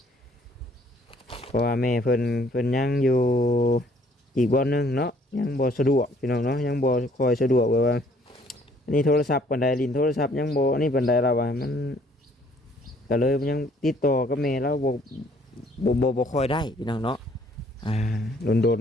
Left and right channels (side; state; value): both; normal; correlation 0.62